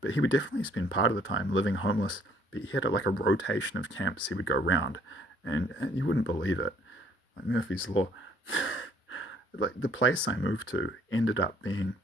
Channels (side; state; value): both; normal; correlation 0.62